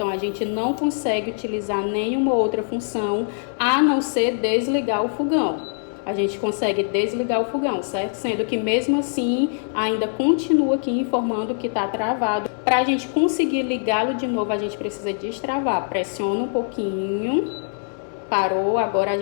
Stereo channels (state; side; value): silent; right; 64 dB below the other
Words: a gente não consegue utilizar nenhuma outra função, a não ser desligar o fogão. A gente consegue desligar o fogão, certo? Sendo que mesmo assim, ainda continua aqui informando que está travado. Para a gente conseguir ligá-lo de novo, a gente precisa destravar. Pressiona um pouquinho Parou, agora a